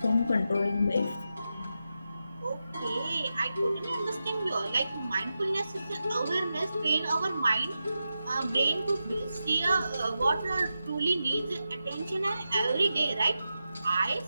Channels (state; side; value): inverted; both; correlation -0.90